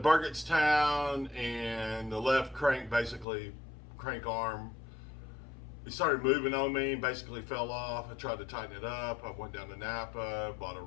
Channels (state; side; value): drops out; right; at 3.2 s